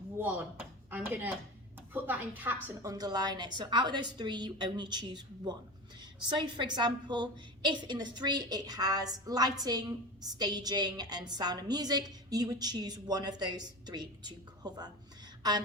1. I'm gonna put that in caps and underline it. So out of those 3, you only choose 1. So for example, if in the 3 it has lighting, staging and sound and music, you would choose one of those 3 to cover.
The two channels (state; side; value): normal; both; correlation 0.28